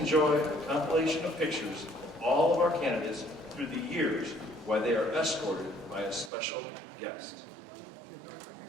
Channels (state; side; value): drops out; left; at 6.3 s